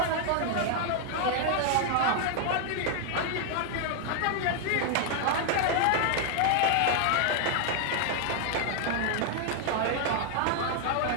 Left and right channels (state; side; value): different; both; correlation 0.00